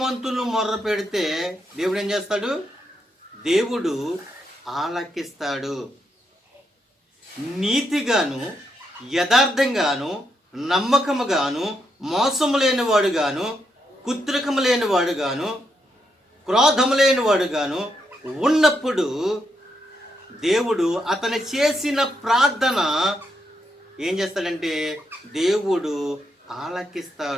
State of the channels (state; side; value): normal; both; correlation 0.80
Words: మొర్ర పెడితే దేవుడు ఏం చేస్తాడు? దేవుడు ఆలకిస్తాడు. నీతిగాను, యథార్థంగాను, నమ్మకముగాను, మోసము లేనివాడుగాను, కుత్రికము లేనివాడుగాను, క్రోధము లేనివాడుగాను ఉన్నప్పుడు దేవుడు అతను చేసిన ప్రార్థన ఏం చేస్తాడంటే దేవుడు